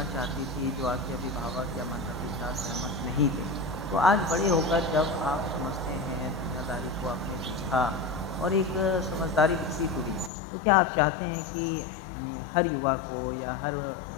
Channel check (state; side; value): drops out; right; at 10.3 s